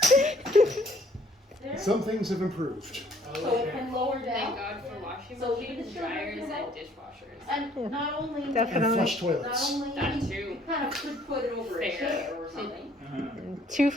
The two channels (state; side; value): normal; both; correlation 0.61